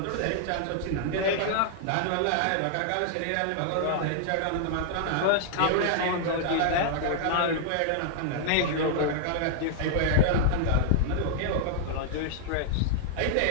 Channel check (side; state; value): both; different; correlation -0.01